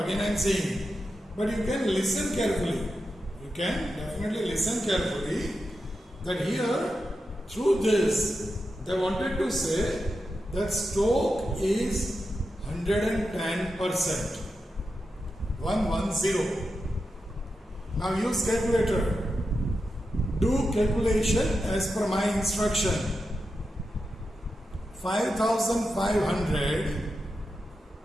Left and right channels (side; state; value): both; normal; correlation 0.89